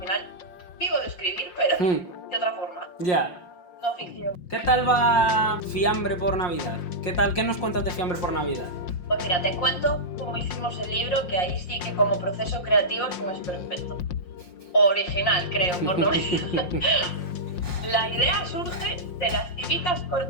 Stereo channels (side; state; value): right; late; 5.6 ms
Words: vivo de escribir, pero de otra forma. Ya. No ficción. ¿Qué tal va Fiambre por Navidad? ¿Qué nos cuentas de Fiambre por Navidad? Pues mira, te cuento cómo hicimos el libro, que ahí sí que como proceso creativo es un esperpento. Original, creo, por lo menos. La idea surge de las típicas